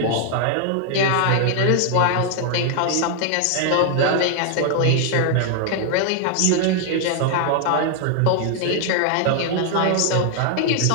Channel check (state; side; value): different; both; correlation 0.00